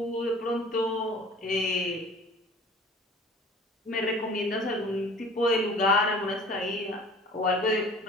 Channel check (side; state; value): both; normal; correlation 0.46